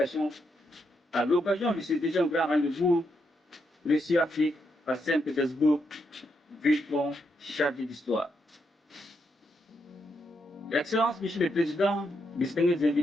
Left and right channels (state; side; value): normal; both; correlation 0.80